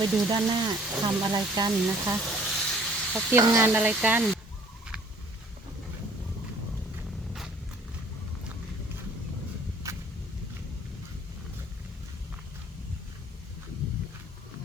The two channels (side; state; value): both; normal; correlation 0.56